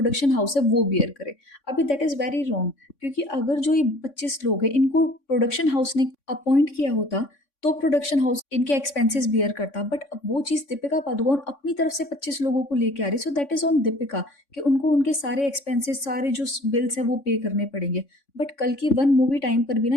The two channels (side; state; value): right; late; 3.6 ms